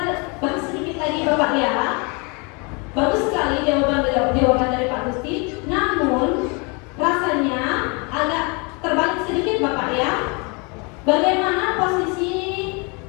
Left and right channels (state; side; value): quieter; right; 31.4 dB